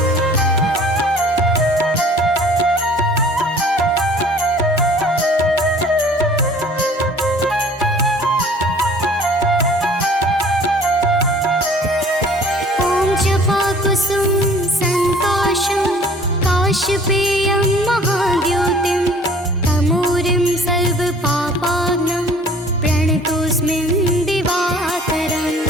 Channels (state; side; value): normal; both; correlation 0.51